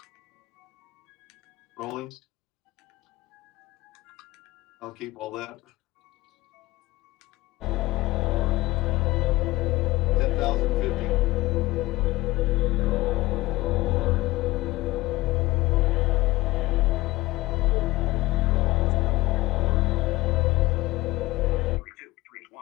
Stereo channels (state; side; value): quieter; right; 19.3 dB